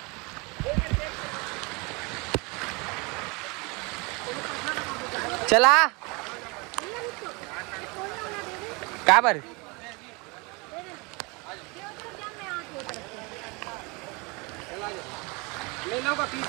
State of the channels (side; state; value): left; quieter; 28.2 dB